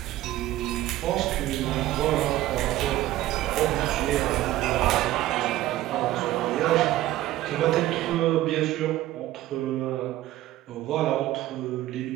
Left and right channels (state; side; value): quieter; left; 15.1 dB